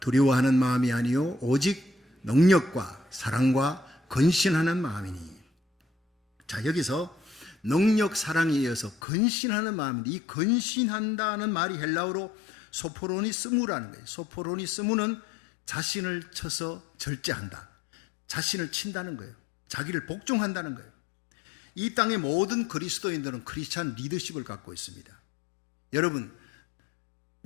마음이 아니요 오직 능력과 사랑과 건신하는 마음이니. 자, 여기서 능력, 사랑에 이어서 건신하는 마음인데, 이 건신한다는 말이 헬라어로 소포로니스무라는 거예요. 소포로니스무는 자신을 쳐서 절제한다, 자신을 친다는 거예요. 자기를 복종한다는 거예요. 이 땅의 모든 그리스도인들은 크리스찬 리더십을 갖고 있습니다. 여러분,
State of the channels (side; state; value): right; drops out; at 9.0 s